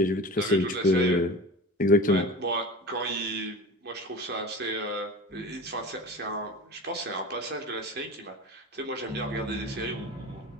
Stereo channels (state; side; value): normal; both; correlation 0.34